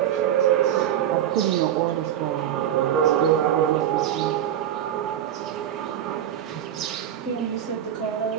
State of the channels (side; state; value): left; quieter; 10.6 dB